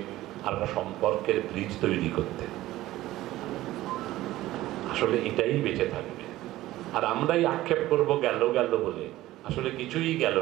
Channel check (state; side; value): quieter; left; 16.1 dB